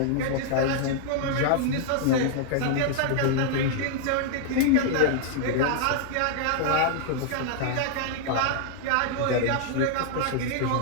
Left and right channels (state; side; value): different; both; correlation 0.00